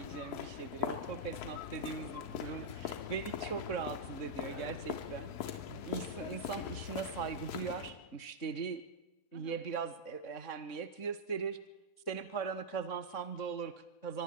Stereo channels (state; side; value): late; right; 3.6 ms